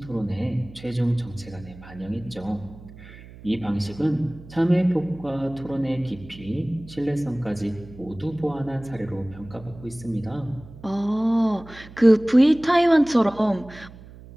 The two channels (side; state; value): right; noise; hum, 18 dB below the sound